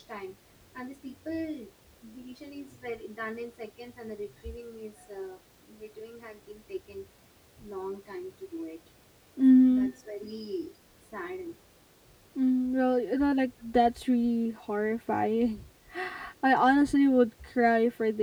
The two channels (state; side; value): identical; both; correlation 1.00